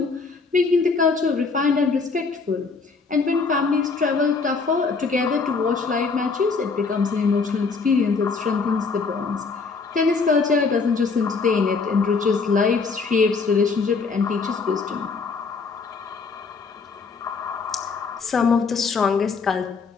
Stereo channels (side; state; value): right; quieter; 4.6 dB